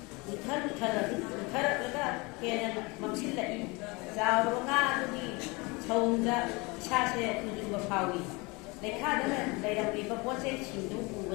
ꯎꯊꯔꯛꯂꯒ ꯍꯦꯟꯅ ꯃꯝꯁꯤꯜꯂꯛꯏ ꯆꯥꯎꯔꯕ ꯉꯥ ꯑꯗꯨꯒꯤ ꯁꯧꯗ ꯏꯁꯥꯁꯦ ꯇꯨꯖꯨꯡꯕ ꯐꯥꯎꯏ ꯂꯩꯈꯥꯗ ꯂꯩꯔꯝꯂꯤꯕ ꯄꯣꯠꯆꯩꯁꯤꯡꯗꯨ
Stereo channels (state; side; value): quieter; right; 26.4 dB